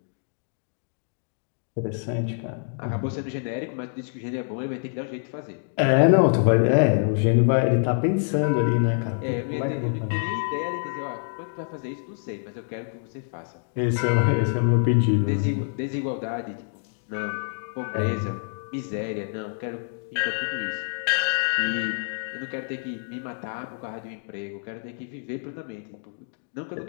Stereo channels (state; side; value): silent; right; digital silence